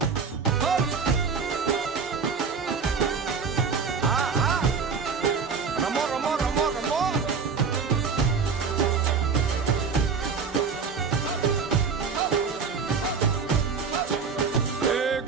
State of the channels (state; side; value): quieter; left; 5.6 dB